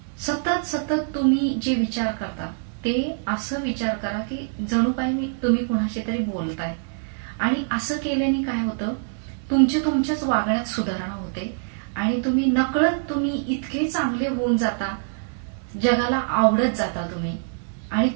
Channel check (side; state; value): left; silent; digital silence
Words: सतत तुम्ही जे विचार करता ते असं विचार करा की जणू काही तुम्ही कुणाशी तरी बोलताय. आणि असं केल्याने काय होतं, तुमच्याच वागण्यात सुधारणा होते आणि तुम्ही नकळत इतके चांगले होऊन जाता, जगाला आवडत जाता तुम्ही. आणि